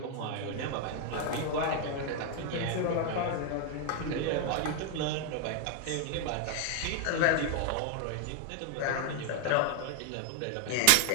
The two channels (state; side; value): different; both; correlation 0.00